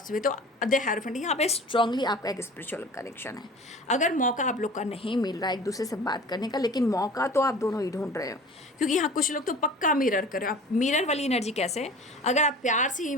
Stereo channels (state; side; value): normal; both; correlation 0.42